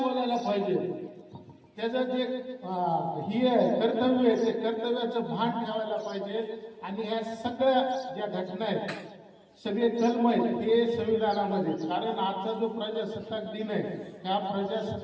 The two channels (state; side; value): identical; both; correlation 1.00